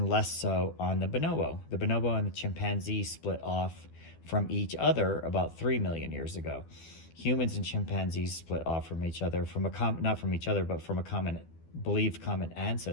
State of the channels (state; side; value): late; right; 12 ms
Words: less so on the bonobo. The bonobo and the chimpanzee split off from each other about 3 million years ago. Humans and chimpanzees split off from each other, not from each other, but from a believed common